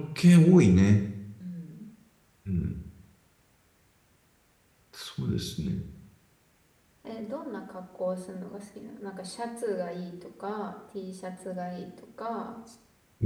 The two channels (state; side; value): identical; both; correlation 1.00